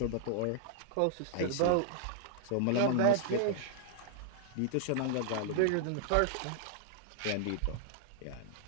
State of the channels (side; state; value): both; different; correlation -0.01